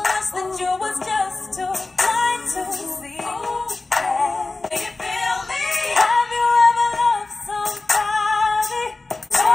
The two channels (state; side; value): quieter; right; 3.4 dB